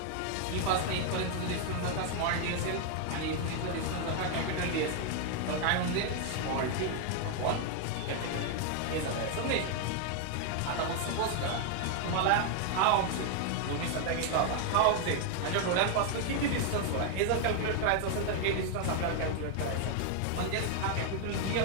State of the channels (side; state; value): both; different; correlation 0.00